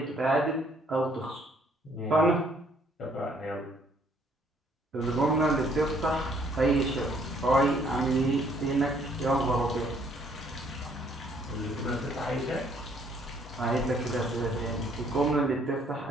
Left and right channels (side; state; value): both; normal; correlation 0.64